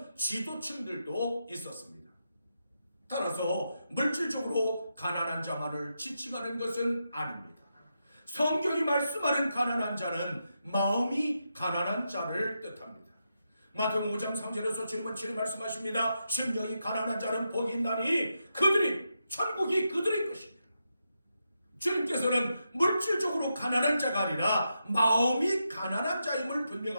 지도층들도 있었습니다. 따라서 물질적으로 가난한 자만을 지칭하는 것은 아닙니다. 성경이 말씀하는 가난한 자는 마음이 가난한 자를 뜻합니다. 마태복음 5장 3절에서 주님은 친히 말씀하십니다. 심령이 가난한 자는 복이 있나니 천국이 그들의 것입니다. 주님께서는 물질적으로 가난한 자가 아니라 마음이 가난한 자임을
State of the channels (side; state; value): both; inverted; correlation -0.85